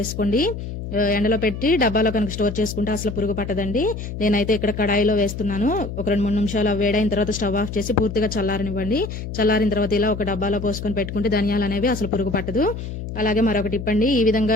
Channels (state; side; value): noise; left; hum, 7 dB below the sound